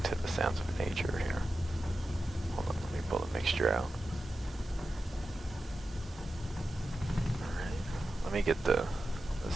the sounds of nature here. Hold on, let me pull the mixture out. Alright, let me get the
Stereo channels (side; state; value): both; normal; correlation 0.92